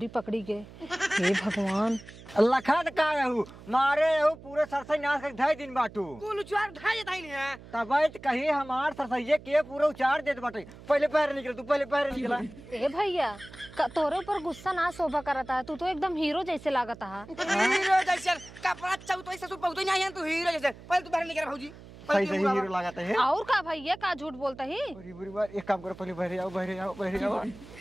पकड़ी गए हे भगवान लखन का रहू मारे रहू पूरे सरसई नाश कर ढाई दिन बाटू कुल उचार ढाई देता ही नहीं है तब कहीं हमार सरसइये के पूरा उचार देत बाटे पहले पहर निकल तू पहले पहर निकला ए भैया तोरे ऊपर गुस्सा ना शोभा करता है तू तो एकदम हीरो जैसे लागता है हीरो जैसे कपड़ा चौथो ससुर बहुत नहीं है तू हीरो जैसे पहले तू बाहर निकल भौजी सही सही हीरो लगाता है और का भैया का झूठ बोलता ही बुरी बुरी बात एक काम करो पहले बहरे आओ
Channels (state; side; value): noise; right; hum, 18 dB below the sound